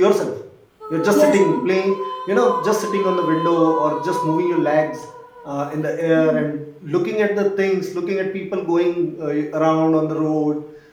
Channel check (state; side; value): identical; both; correlation 1.00